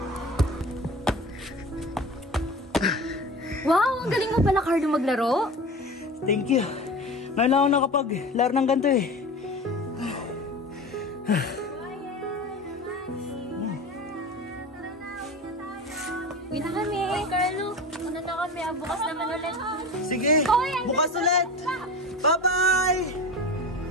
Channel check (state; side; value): normal; both; correlation 0.32